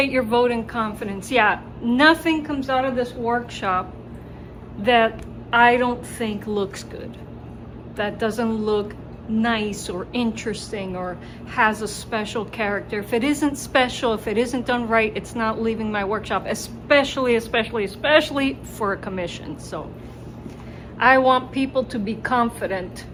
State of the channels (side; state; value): both; identical; correlation 1.00